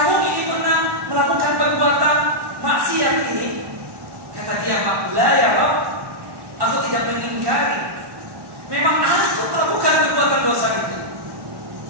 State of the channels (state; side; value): late; left; 1.1 ms